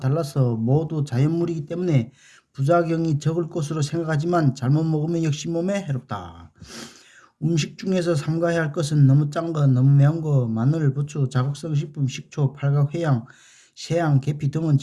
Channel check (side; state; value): both; identical; correlation 1.00